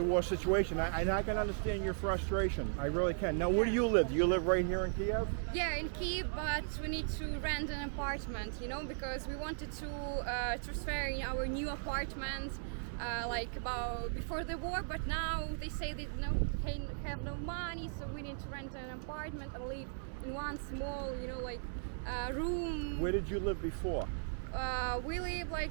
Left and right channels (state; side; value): silent; left; 53 dB below the other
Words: war situation. I can understand your frustration. I really can. Now, where do you live? Do you live right here in Kyiv? Yeah, in Kyiv, but we need to rent an apartment, because we wanted to transfer in our new apartment like about before the war, but now they say they have no money, so we need to rent an apartment and live in one small, room. Where did you live before? We live